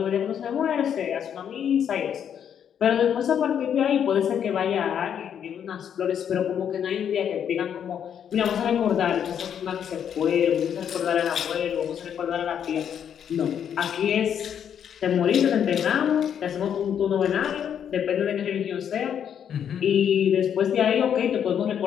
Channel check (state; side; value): quieter; right; 8.6 dB